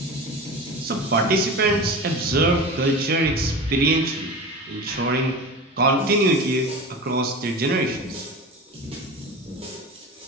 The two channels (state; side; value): normal; both; correlation 0.30